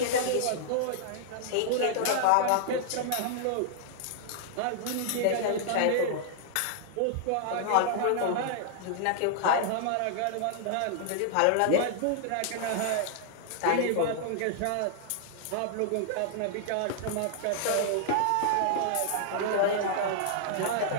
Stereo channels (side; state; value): both; different; correlation -0.01